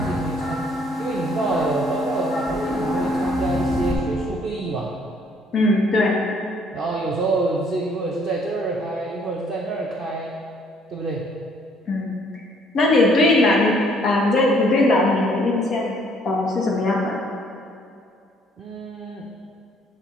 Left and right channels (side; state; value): both; normal; correlation 0.63